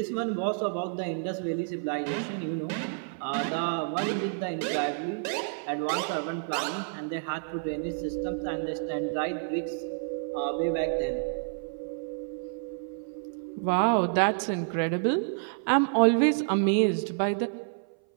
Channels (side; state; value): left; silent; 56 dB below the other